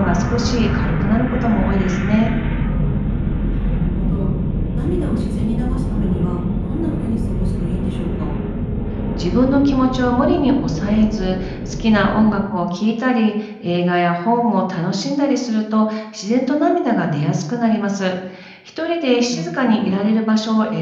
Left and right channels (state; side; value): identical; both; correlation 1.00